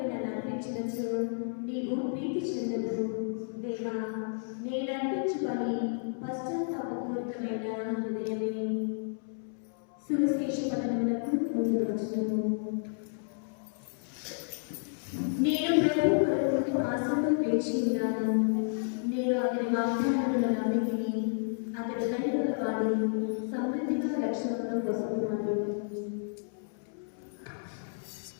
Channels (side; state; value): right; silent; 57 dB below the other